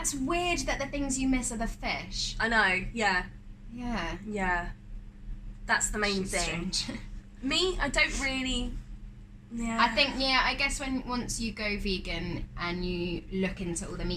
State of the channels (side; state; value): both; identical; correlation 1.00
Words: weird that the things you miss are the fish. I know. Yeah. Yeah. That's the main thing. Strange. Me, I don't really. Yeah. I think I guess once you go vegan and you look into all the